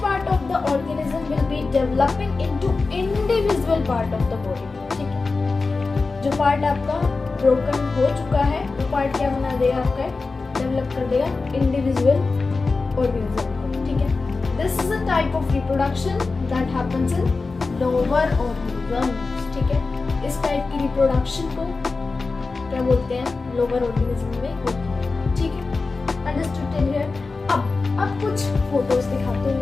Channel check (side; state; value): right; quieter; 4.0 dB